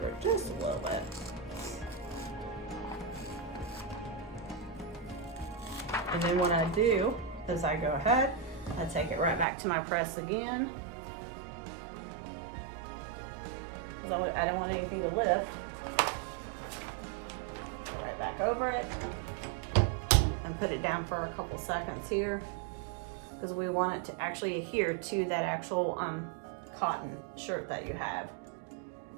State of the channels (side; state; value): left; drops out; at 9.5 s